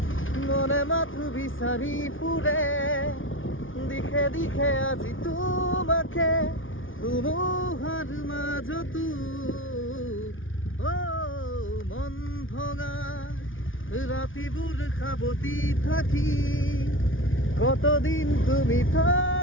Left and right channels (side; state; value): right; late; 0.57 ms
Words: মনে মাথো বিচাৰি ফুৰে দিশে আজি তোমাকে ধুমুহাৰ মাজতো মন ভঙা ৰাতিবোৰ সাৱতি থাকি কতদিন তুমি